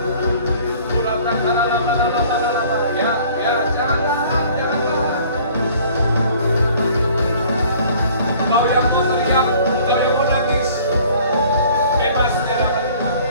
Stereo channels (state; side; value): inverted; both; correlation -0.52